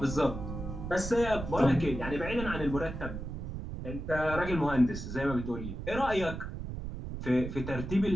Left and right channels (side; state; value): right; noise; rumble, 7 dB below the sound